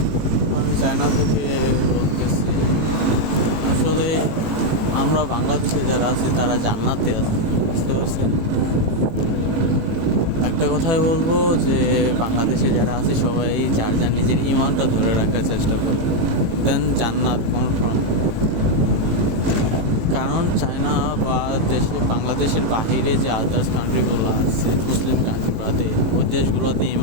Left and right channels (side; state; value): left; late; 18 ms